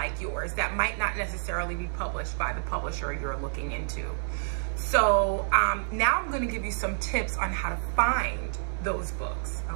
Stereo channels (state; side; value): silent; left; 55 dB below the other